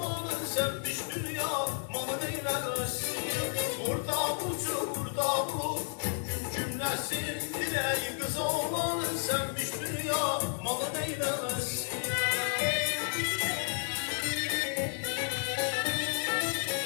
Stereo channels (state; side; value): silent; right; 56 dB below the other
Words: sevmiş dünya mal eylemesin. Burada bulur gün cümlesi. Diley kız oğlanın sevmiş dünya mal eylemesin.